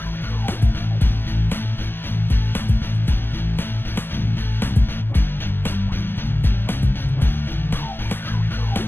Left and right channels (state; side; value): late; right; 0.099 ms